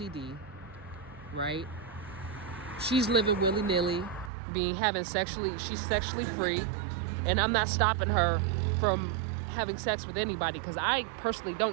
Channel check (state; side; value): drops out; left; at 4.3 s